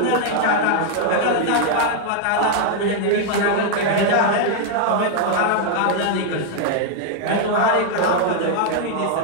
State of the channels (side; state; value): both; different; correlation 0.00